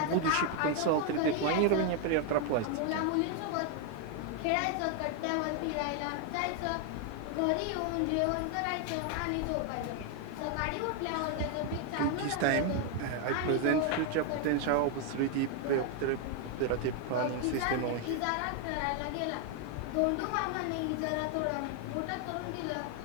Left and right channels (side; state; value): both; different; correlation 0.01